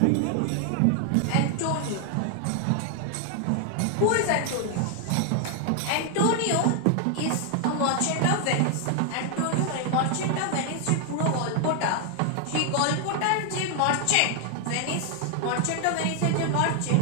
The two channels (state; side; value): different; both; correlation 0.00